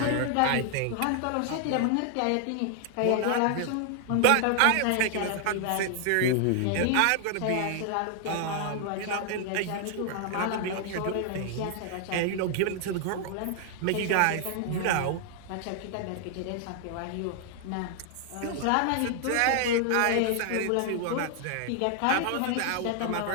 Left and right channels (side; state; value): both; different; correlation 0.00